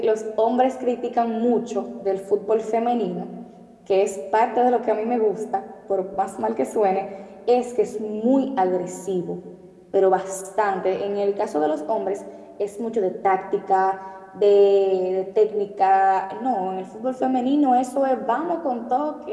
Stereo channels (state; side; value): identical; both; correlation 1.00